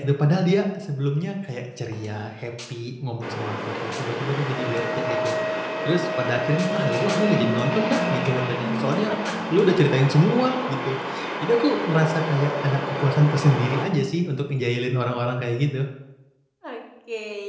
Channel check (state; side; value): identical; both; correlation 1.00